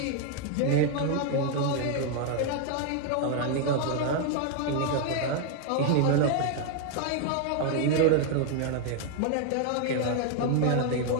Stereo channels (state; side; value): different; both; correlation 0.00